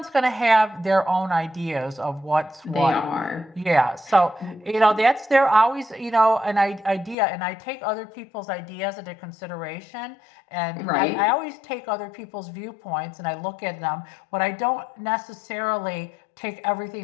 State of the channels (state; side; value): drops out; right; at 7.2 s